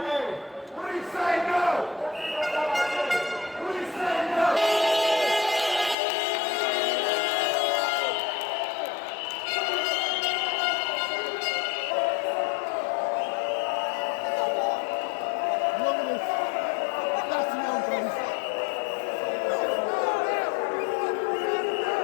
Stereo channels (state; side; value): drops out; right; at 6.0 s